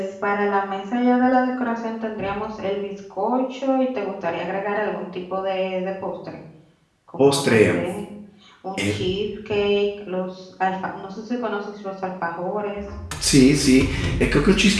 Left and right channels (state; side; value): identical; both; correlation 1.00